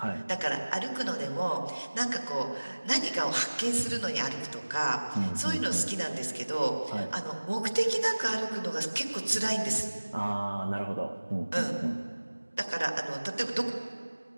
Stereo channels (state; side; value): inverted; both; correlation -1.00